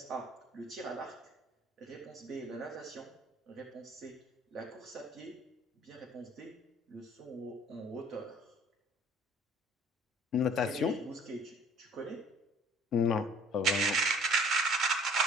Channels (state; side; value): normal; both; correlation 0.54